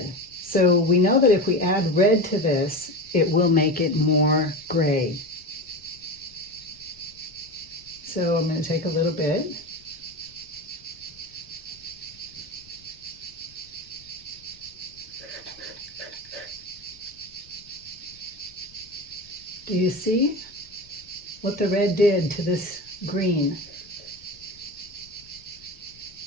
So we know that if we add red to this, it will make it more gray. So I'm going to take a little bit. Do you see what the red did to this green?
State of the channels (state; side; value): noise; left; rumble, 26 dB below the sound